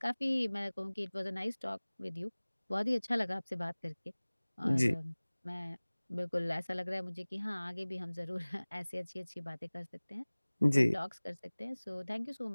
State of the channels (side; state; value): both; inverted; correlation -1.00